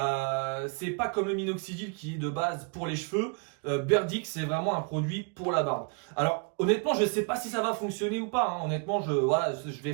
C'est pas comme le minoxidil qui est de base pour les cheveux. Berdix, c'est vraiment un produit pour la barbe. Alors honnêtement, je sais pas si ça va fonctionner ou pas. Hein. Honnêtement, je vais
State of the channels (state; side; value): quieter; left; 33.6 dB